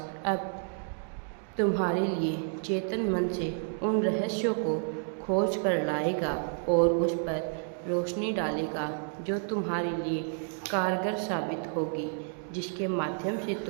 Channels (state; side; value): silent; left; 58 dB below the other